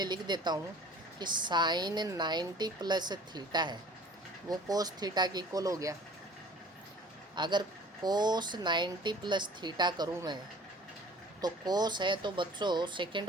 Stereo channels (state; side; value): normal; both; correlation 0.48